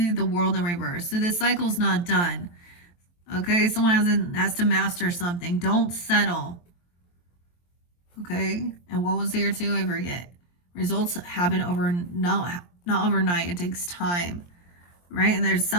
the world in reverse. So this cycle's not done. Okay, someone has to master something. Don't settle. Okay, and what was here too? I forget. Results happen not overnight. It takes time, right? And there's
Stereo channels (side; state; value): right; late; 23 ms